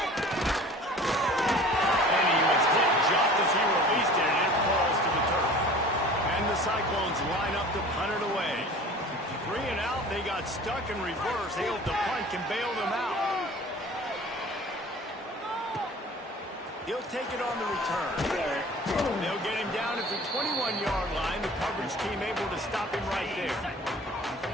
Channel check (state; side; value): normal; both; correlation 0.44